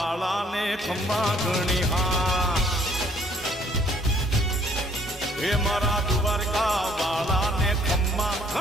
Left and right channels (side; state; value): both; normal; correlation 0.62